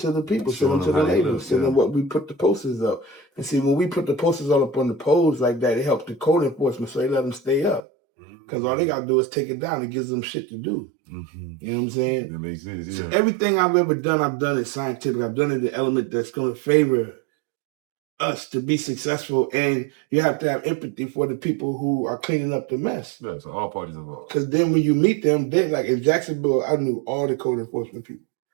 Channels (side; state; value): left; drops out; at 7.8 s